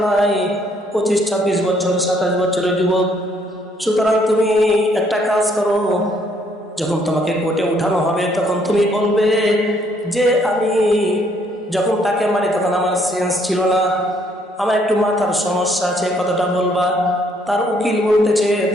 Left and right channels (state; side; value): normal; both; correlation 0.67